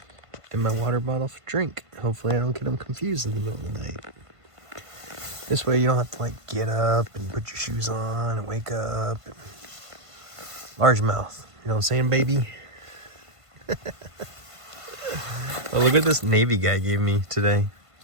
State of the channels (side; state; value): left; late; 1.5 ms